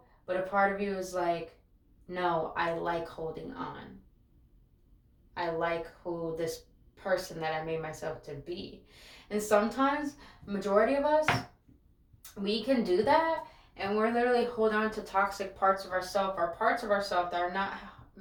but a part of you is like, no, I like holding on. I like who this person that I made myself to be. And sometimes, majority of us, we can do that, and we're literally holding on to toxic parts of ourselves, or parts of ourselves that are not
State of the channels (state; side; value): identical; both; correlation 1.00